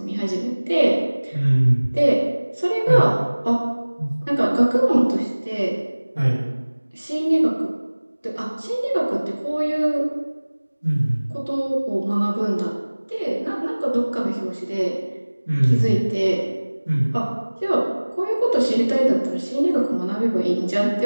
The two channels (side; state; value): both; inverted; correlation -1.00